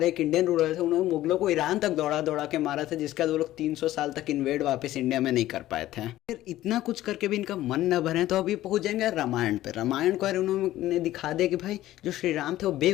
एक इंडियन रूलर थे उन्होंने मुगलों को ईरान तक दौड़ा दौड़ा के मारा था, जिसका वो लोग 300 साल तक इन्वेड वापस इंडिया में नहीं कर पाए थे। फिर इतना कुछ करके भी इनका मन न भरे तो अभी पहुंच जाएंगे रामायण पे। रामायण को यार उन्होंने दिखा दिया कि भाई जो श्री राम थे वो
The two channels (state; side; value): quieter; right; 14.8 dB